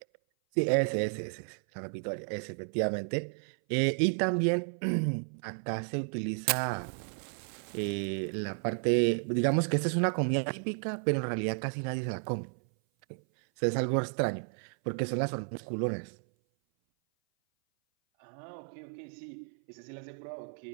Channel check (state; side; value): silent; left; 56 dB below the other